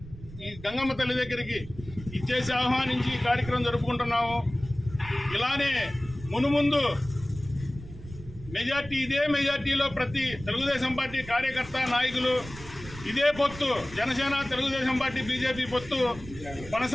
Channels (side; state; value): right; noise; rumble, 15 dB below the sound